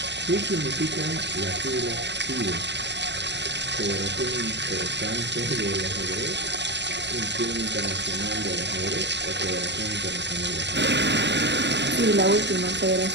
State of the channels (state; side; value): late; left; 0.51 ms